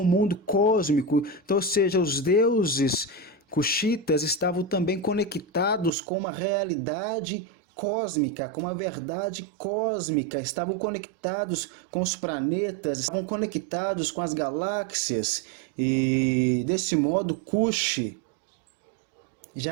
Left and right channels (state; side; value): drops out; left; at 5.9 s